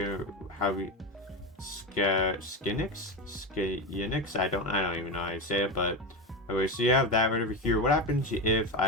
I don't even know how to say it, but okay, so you have that right over here. What happens if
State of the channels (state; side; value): normal; both; correlation 0.18